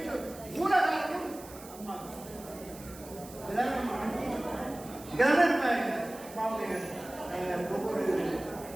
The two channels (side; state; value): right; noise; hiss, 18 dB below the sound